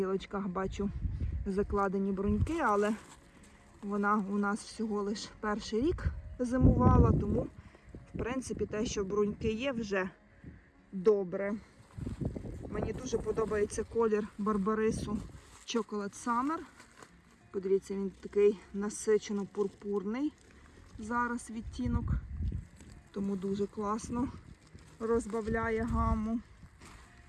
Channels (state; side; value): identical; both; correlation 1.00